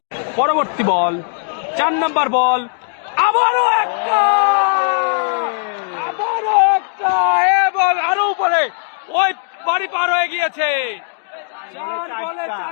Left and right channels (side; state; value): right; silent; digital silence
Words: পরবর্তী বল 4 নম্বর বল। আবারও একটা এবং আরো উপরে ওই বাড়ি পার হয়ে গিয়েছে। 4 বলে